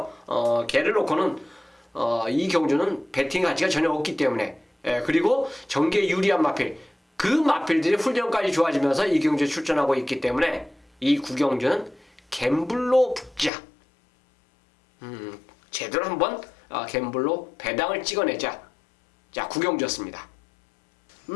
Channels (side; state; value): right; drops out; at 13.5 s